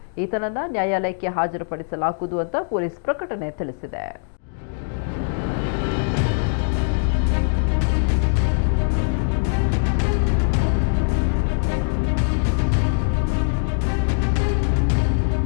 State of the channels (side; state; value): right; silent; digital silence